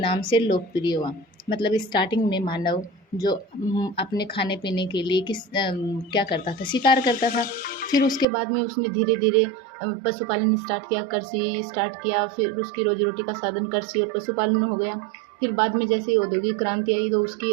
से लोकप्रिय हुआ। मतलब स्टार्टिंग में मानव जो अपने खाने पीने के लिए क्या करता था, शिकार करता था। फिर उसके बाद में उसने धीरे धीरे पशुपालन स्टार्ट किया, कृषि स्टार्ट किया। फिर उसकी रोजी रोटी का साधन कृषि और पशुपालन हो गया। फिर बाद में जैसे औद्योगिक क्रांति आई तो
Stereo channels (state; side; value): drops out; left; at 8.2 s